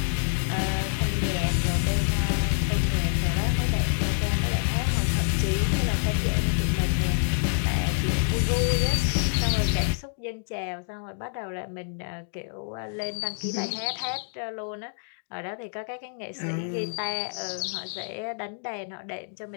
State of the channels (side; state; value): right; silent; digital silence